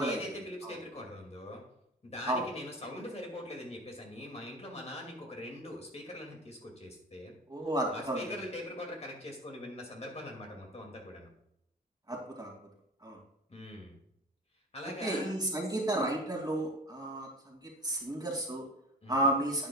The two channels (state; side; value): normal; both; correlation 0.33